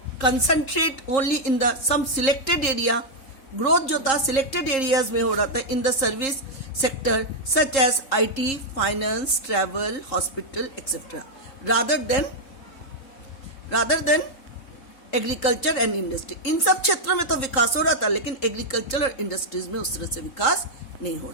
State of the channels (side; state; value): right; late; 3.7 ms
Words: concentrate only in the some selected area. Growth जो था selected areas में हो रहा था in the service sector such as IT, finance, travel, hospital, etc. Rather than agriculture and industry. इन सब क्षेत्रों में तो विकास हो रहा था, लेकिन एग्रीकल्चर और इंडस्ट्रीज में उस तरह से विकास नहीं हो